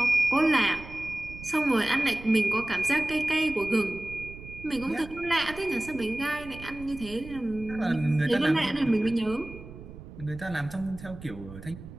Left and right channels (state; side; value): noise; right; rumble, 15 dB below the sound